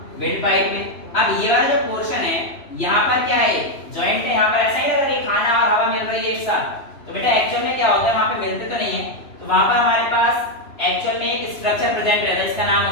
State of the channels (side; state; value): right; late; 3.0 ms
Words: विंड पाइप में। अब ये वाला जो पोर्शन है यहाँ पर क्या है, जॉइंट है, यहाँ पर ऐसा ही लग रहा है कि खाना और हवा मिल रही है एक साथ। तो बेटा एक्चुअल में क्या होता है, वहां पे मिलते तो नहीं है, तो वहां पर हमारे पास एक्चुअल में एक स्ट्रक्चर प्रेजेंट रहता है, इसका नाम